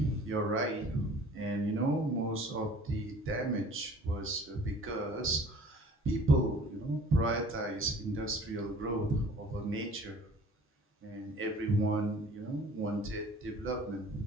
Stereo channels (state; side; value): normal; both; correlation 0.49